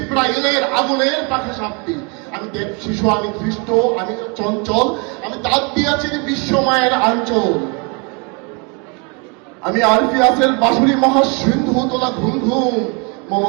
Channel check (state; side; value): quieter; left; 32.9 dB